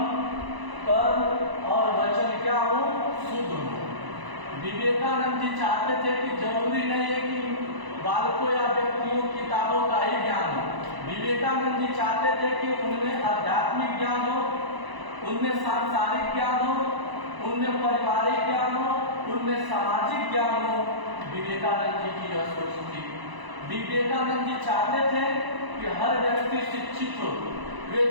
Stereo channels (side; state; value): left; late; 1.0 ms